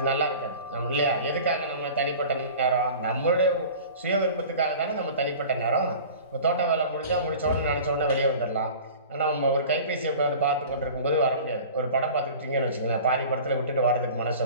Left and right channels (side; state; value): both; inverted; correlation -0.40